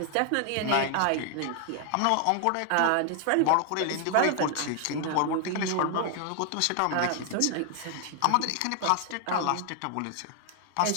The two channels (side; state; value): both; different; correlation 0.00